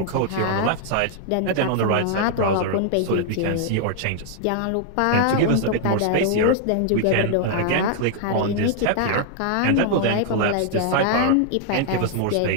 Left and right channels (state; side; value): different; both; correlation -0.01